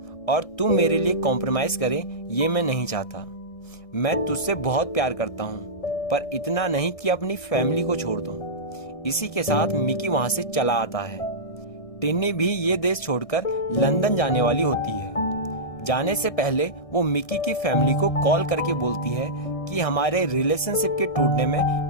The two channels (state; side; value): late; right; 1.6 ms